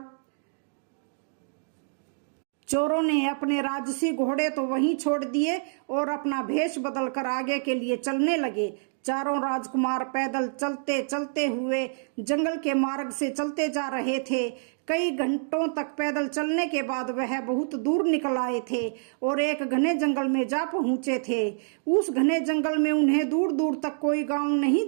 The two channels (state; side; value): silent; left; digital silence